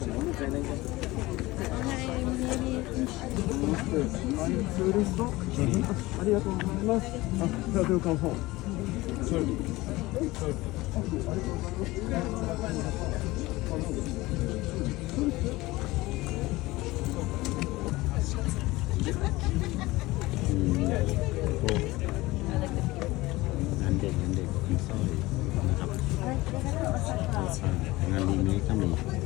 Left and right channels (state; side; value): quieter; right; 19.9 dB